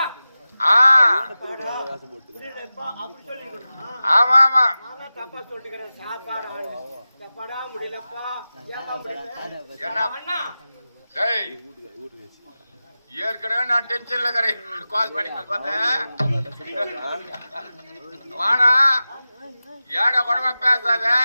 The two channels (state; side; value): inverted; both; correlation -0.95